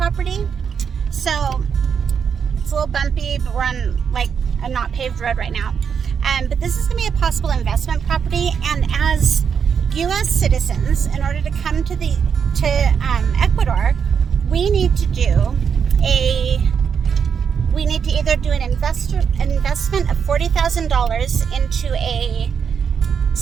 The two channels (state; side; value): quieter; left; 6.9 dB